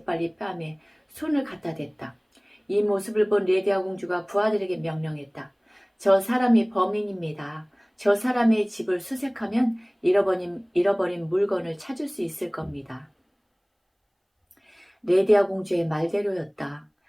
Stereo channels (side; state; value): both; identical; correlation 1.00